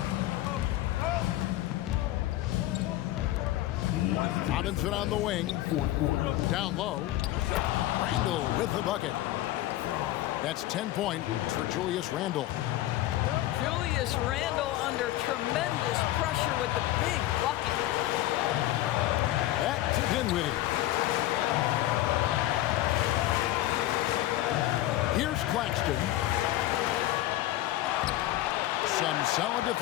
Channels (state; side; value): quieter; right; 15.2 dB